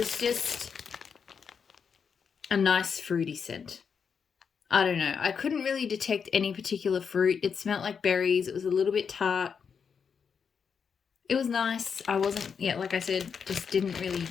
just a nice fruity scent. I don't know. I couldn't really detect any particular fruit. It smelled like berries. It was a little bit tart. It was nice. I wasn't, like I said, just didn't really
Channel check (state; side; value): quieter; right; 6.4 dB